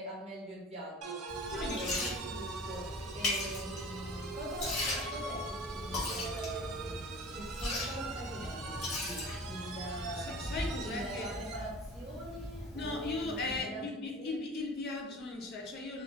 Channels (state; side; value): normal; both; correlation 0.41